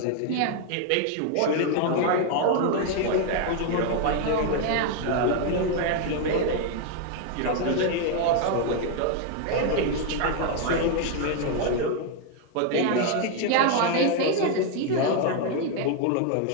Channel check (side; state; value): both; different; correlation 0.01